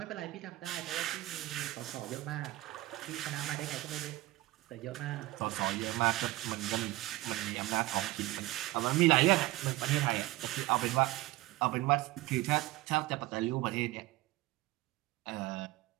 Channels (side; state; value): left; quieter; 18.6 dB